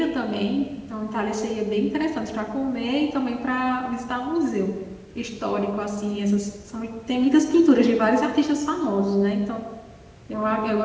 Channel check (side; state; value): both; identical; correlation 1.00